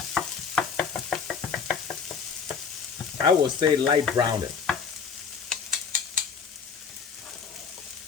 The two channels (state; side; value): quieter; right; 6.2 dB